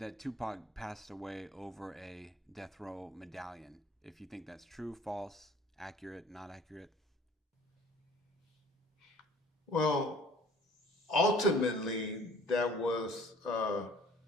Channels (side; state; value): both; normal; correlation 0.51